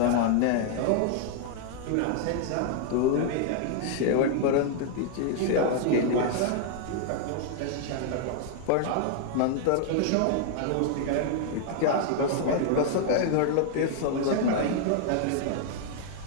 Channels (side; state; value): both; different; correlation 0.00